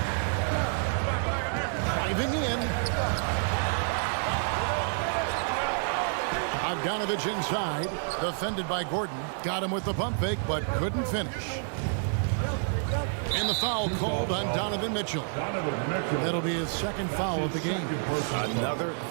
Driving in. Bogdanovich inside. Defended by Gordon. Got him with the pump fake, but couldn't finish. And the foul called on Donovan Mitchell. That'll be his second foul of the game. Another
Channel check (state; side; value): silent; left; 56 dB below the other